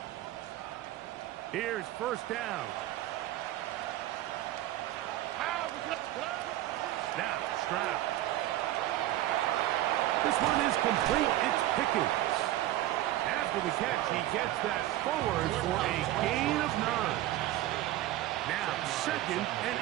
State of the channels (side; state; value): left; quieter; 14.9 dB